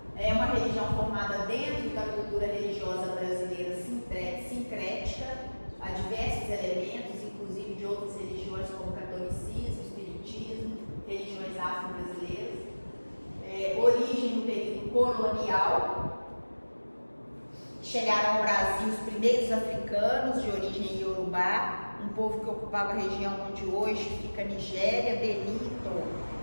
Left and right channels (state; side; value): inverted; both; correlation -1.00